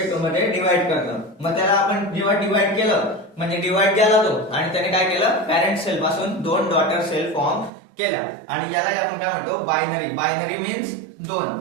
मध्ये डिवाइड करतं। मग त्याला आपण जेव्हा डिवाइड केलं, म्हणजे डिवाइड केला तो, आणि त्याने काय केलं, पॅरेंट सेल पासून दोन डॉटर सेल फॉर्म केल्या, आणि याला आपण काय म्हणतो, बायनरी। बायनरी मीन्स दोन,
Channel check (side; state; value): left; drops out; at 7.7 s